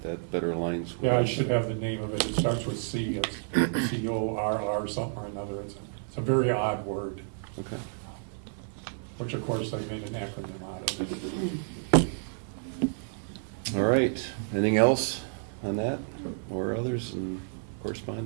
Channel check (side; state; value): left; silent; 58 dB below the other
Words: that better aligns with. Yeah, I should have the name of it. It starts with C, it's CORR something or another. It's a very odd word, Okay. which of course they made an acronym out of it. All right. Anything else on that or others in